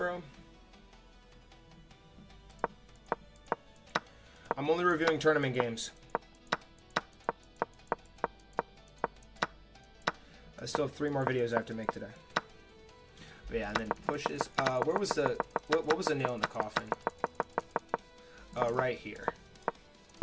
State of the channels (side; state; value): both; identical; correlation 1.00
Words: I'm only reviewing tournament games. I still have 3 more videos I have to make today. But yeah, and then pushes. Where was the what was the nail in the coffin? Right here.